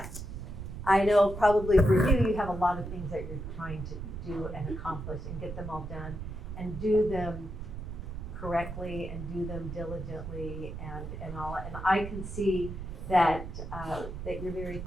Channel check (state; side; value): noise; right; rumble, 8 dB below the sound